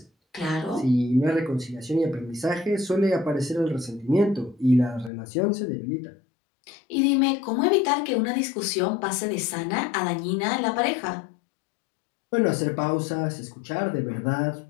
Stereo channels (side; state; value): right; drops out; at 5.1 s